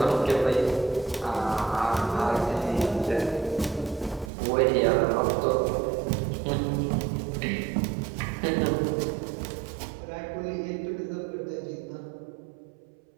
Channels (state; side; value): drops out; left; at 4.3 s